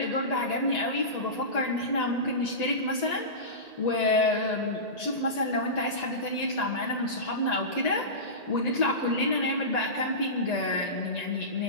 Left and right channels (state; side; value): late; right; 1.8 ms